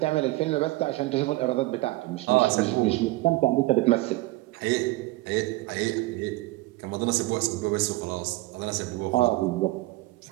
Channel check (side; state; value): left; quieter; 20.0 dB